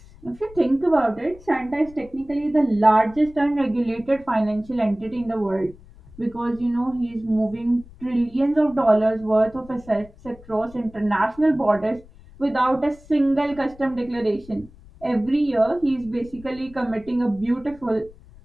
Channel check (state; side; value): noise; left; rumble, 22 dB below the sound